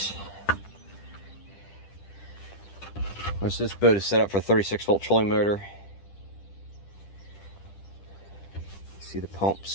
Of course, this boat is set up for a 36-volt trolling motor. See the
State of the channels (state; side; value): late; right; 10 ms